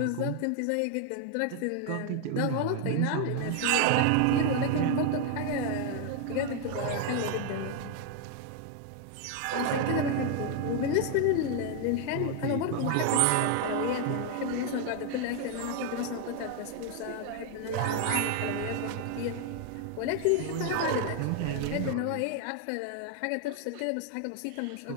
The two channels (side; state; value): both; different; correlation 0.01